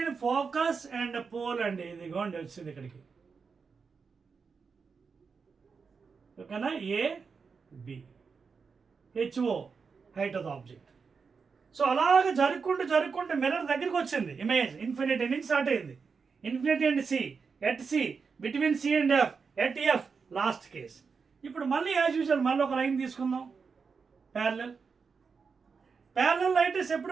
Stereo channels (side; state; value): left; quieter; 5.3 dB